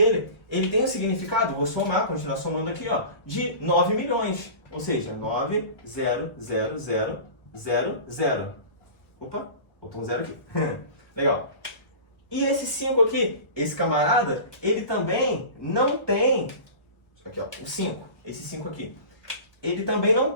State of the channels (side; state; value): right; late; 1.2 ms